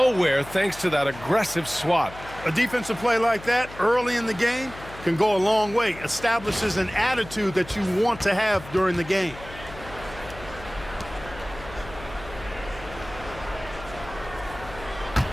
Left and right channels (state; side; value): noise; left; hum, 16 dB below the sound